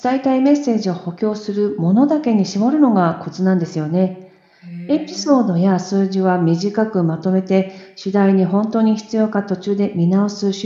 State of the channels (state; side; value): identical; both; correlation 1.00